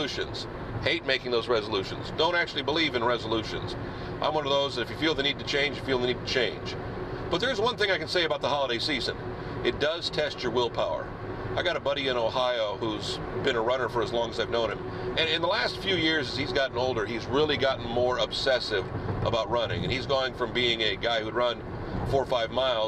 Hate making those resolutions. Don't actually believe in resolutions. I'm one of those that if you feel the need to change, you feel the need to change. But there's one thing I can say about the holiday season. It does test your willpower. I got a buddy in Ohio who's been a runner for as long as I've known him. And in the last few years, as he's gotten older, he's really gotten more obsessive about running. And he's going from being a guy who'd run 4 or 5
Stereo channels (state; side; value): identical; both; correlation 1.00